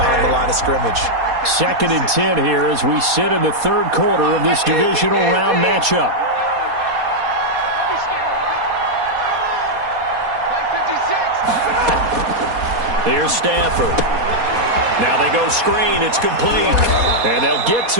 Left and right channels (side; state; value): left; late; 4.2 ms